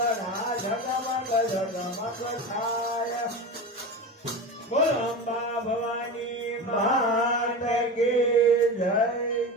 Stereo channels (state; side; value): normal; both; correlation 0.26